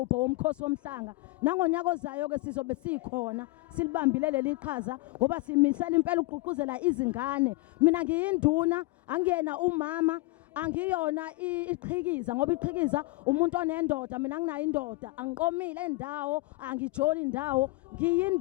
womkhosi womhlanga. Nangonyaka ozayo ke sizobe sikhona silibambile leli qhaza ngoba simisela impela uqhuquzela izingane. Mina ngiyinduna, angiyena umama, angiyona iqhikiza ngoba iqhikiza umuntu onendoda, mina nginayo indoda, angiqomile endawo, angijoli indawo,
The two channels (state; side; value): quieter; right; 21.7 dB